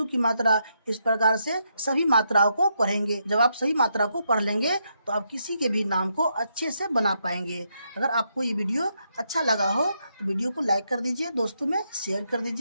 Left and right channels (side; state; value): both; inverted; correlation -0.79